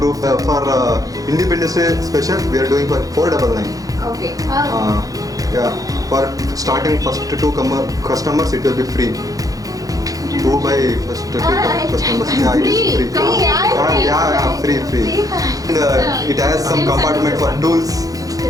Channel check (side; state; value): left; late; 0.17 ms